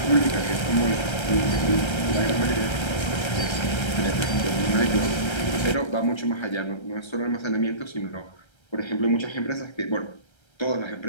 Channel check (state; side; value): late; right; 1.3 ms